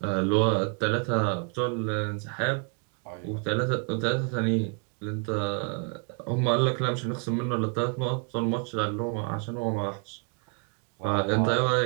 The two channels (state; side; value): quieter; left; 36.0 dB